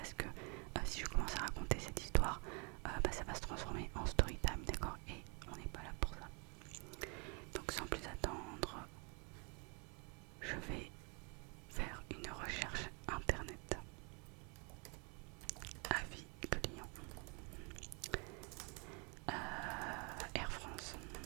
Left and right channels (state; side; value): quieter; left; 33.5 dB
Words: que si je commence à raconter cette histoire, ça va se transformer en story time, d'accord? Et on n'est pas là pour ça. Donc sans plus attendre, je vais faire une recherche internet. Avis client. Air France.